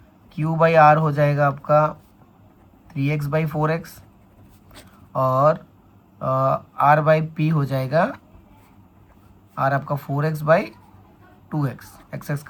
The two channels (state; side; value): identical; both; correlation 1.00